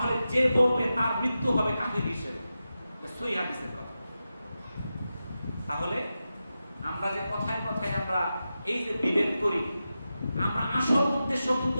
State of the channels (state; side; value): inverted; both; correlation -0.92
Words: যে বলবে তার মৃত্যু হবে কাফির হিসেবে। সহিহ হাদিসের কথা। তাহলে আমরা যে কথায় কথায় আমরা এই যে বিভেদ করি, আমরা আসল উদ্দেশ্য কিন্তু